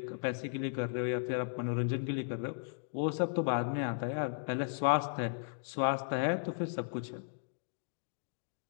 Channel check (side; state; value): right; silent; digital silence